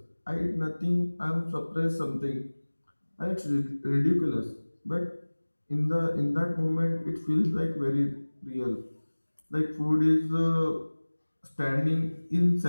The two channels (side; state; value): both; inverted; correlation -1.00